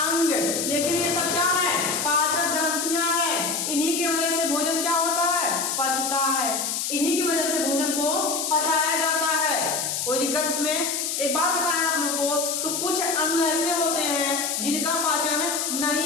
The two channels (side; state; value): left; noise; hiss, 1 dB below the sound